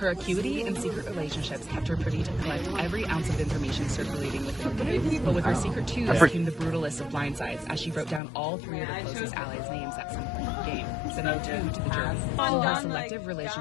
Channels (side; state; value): right; drops out; at 8.2 s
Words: acuity and secret relationships kept her privy to collect every ounce of information circulating within the game. But with her secret 2 came the brutalist of blindsides, as she wrote down all 3 of her closest allies' names at some point in the game, sending 2 to the jury. Will her selective